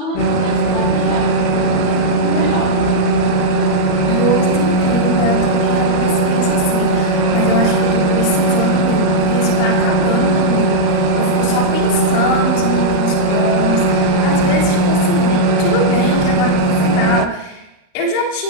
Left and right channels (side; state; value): right; late; 34 ms